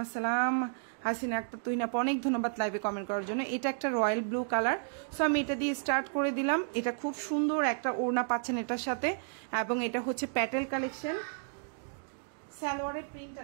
আসসালাম হাসিনা আক্তার। তুহিন আপু অনেক ধন্যবাদ লাইভে কমেন্ট করার জন্য। এটা একটা রয়্যাল ব্লু কালার। সো আমি এটা দিয়ে স্টার্ট করে দিলাম। এটা খুব সুন্দর একটা ওড়না পাচ্ছেন এটার সাথে, এবং এটা হচ্ছে প্যাটেল কালেকশন। সালোয়ারের প্রিন্টটা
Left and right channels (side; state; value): left; silent; digital silence